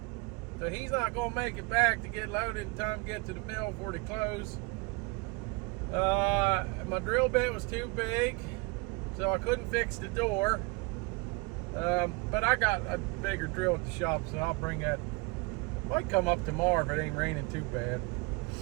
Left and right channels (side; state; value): left; quieter; 27.4 dB